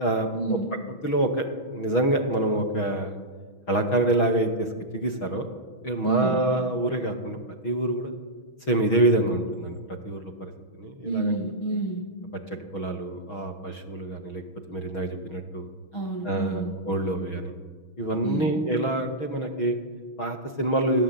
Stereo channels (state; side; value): late; right; 6.3 ms